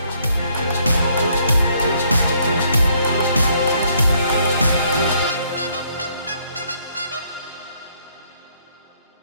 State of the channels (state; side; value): inverted; both; correlation -0.68